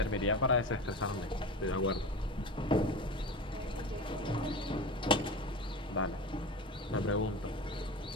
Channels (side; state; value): both; normal; correlation 0.29